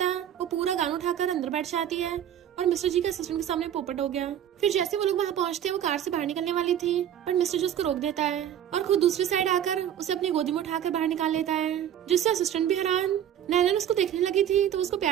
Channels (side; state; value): left; quieter; 10.2 dB